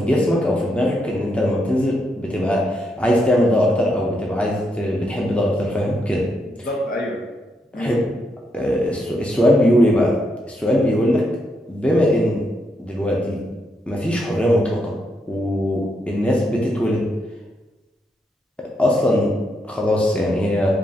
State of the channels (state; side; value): normal; both; correlation 0.79